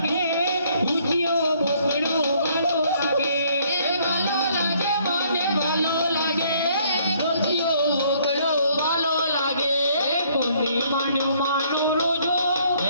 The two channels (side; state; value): both; inverted; correlation -0.64